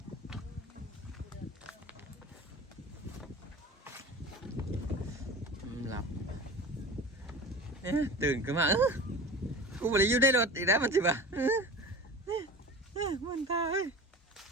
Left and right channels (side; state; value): both; normal; correlation 0.35